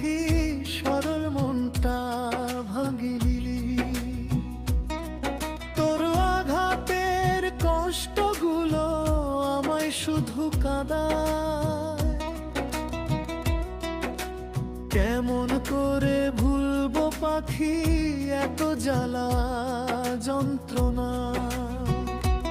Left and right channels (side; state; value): both; identical; correlation 1.00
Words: সরল মনটা ভাঙিলি? তোর আঘাতের কষ্টগুলো আমায় শুধু কাঁদায়। কেমন করে ভুলবো পাখি এত জ্বালা যন্ত্রণা?